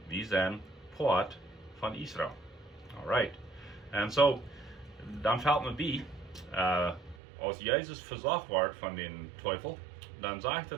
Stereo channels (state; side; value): drops out; left; at 7.2 s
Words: we zijn poort van Israël. Alright. En zo, dan valt me bij, als Jezus verzocht wordt van de teufel, dan zegt hij